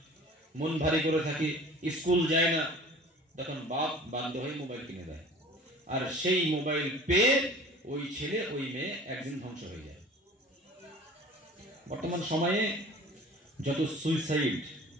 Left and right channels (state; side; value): normal; both; correlation 0.44